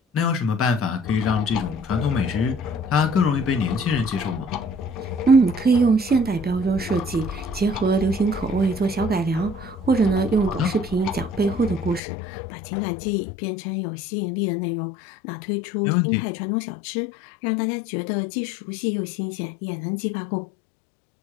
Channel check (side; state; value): right; drops out; at 12.0 s